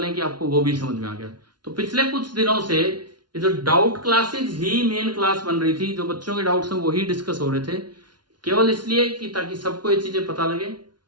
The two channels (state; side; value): late; left; 0.70 ms